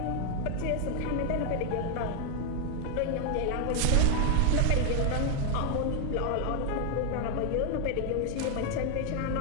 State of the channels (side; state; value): both; different; correlation 0.00